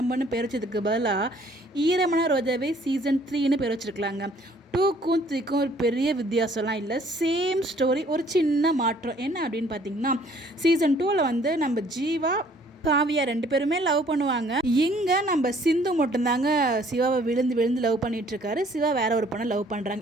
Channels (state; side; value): normal; both; correlation 0.59